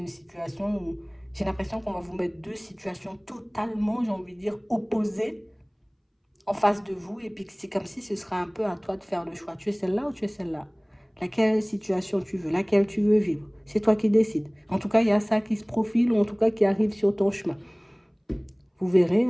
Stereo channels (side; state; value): both; identical; correlation 1.00